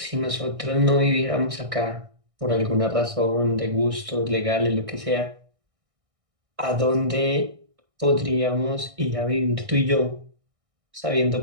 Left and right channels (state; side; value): late; left; 1.6 ms